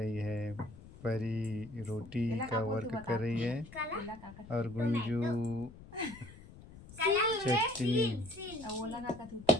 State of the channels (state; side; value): noise; left; rumble, 18 dB below the sound